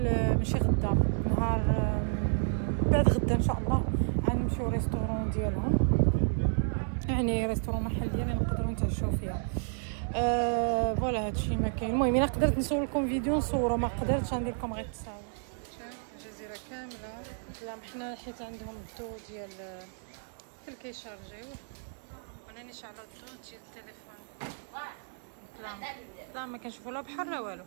ماشي غدا، نهار بعد غدا ان شاء الله غنمشيو ريستورون ديالهم، يعني ريستورون محل ديالنا نقدروا نتعشاو فيها. فوالا هادشي ما كاين. المهم الا قدرت نصور لكم فيديو نصورو، ما قدرتش غندير لكم غير التصاور. الجزيره كامله ظلام، حنا حيت عندهم الضو ديال كيشارجيو، وانا شعلوا الضو ديال التليفون. ظلام ما كنشوفو لا بحر لا والو،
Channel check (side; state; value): left; silent; 57 dB below the other